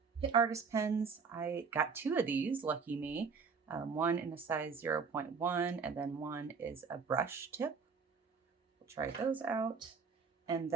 Pitt Artist Pens. I got two of these, lucky me. One in a size 0.1, and then one is a brush tip. We'll try those out. And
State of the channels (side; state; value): left; quieter; 5.4 dB